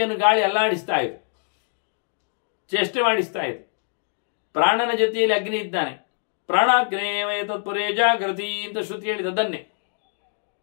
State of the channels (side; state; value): right; silent; 62 dB below the other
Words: ಗಾಳಿ ಅಲ್ಲಾಡಿಸ್ತಾ ಇದೆ, ಚೇಷ್ಟೆ ಮಾಡಿಸ್ತಾ ಇದೆ. ಪ್ರಾಣನ ಜೊತೆಯಲ್ಲಿ ಅಗ್ನಿ ಇದ್ದಾನೆ. ಪ್ರಾಣಾಗ್ನೇಯ ತತ್ಪುರೇ ಜಾಗೃತಿ ಅಂತ ಶ್ರುತಿ ಹೇಳಿದದನ್ನೇ.